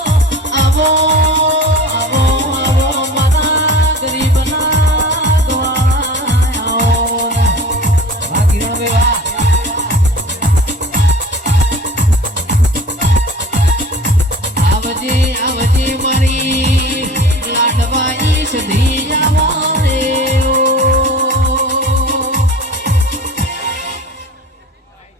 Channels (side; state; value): both; normal; correlation 0.40